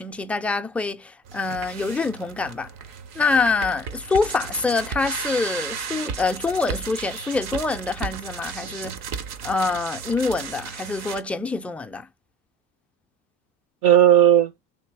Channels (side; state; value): both; normal; correlation 0.40